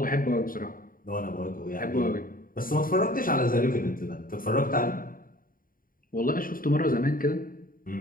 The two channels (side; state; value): right; late; 0.41 ms